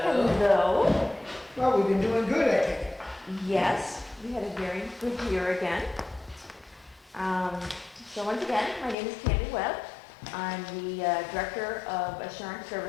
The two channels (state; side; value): drops out; right; at 9.0 s